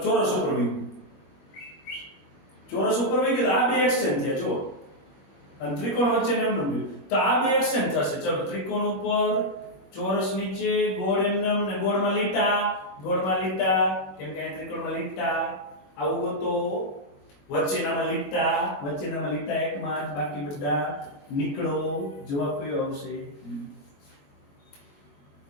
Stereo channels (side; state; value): right; late; 21 ms